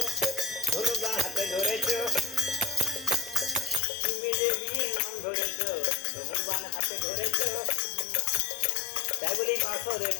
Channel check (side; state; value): right; drops out; at 3.8 s